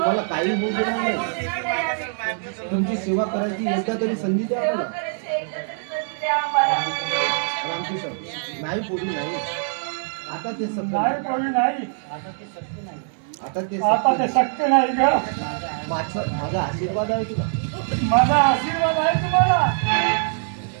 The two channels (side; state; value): left; silent; digital silence